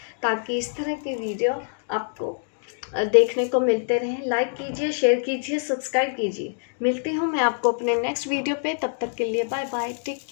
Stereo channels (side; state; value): right; silent; digital silence